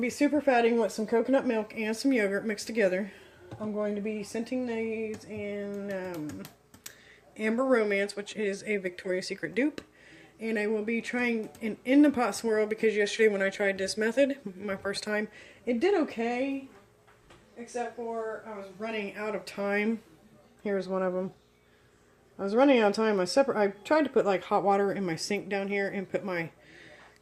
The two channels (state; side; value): identical; both; correlation 1.00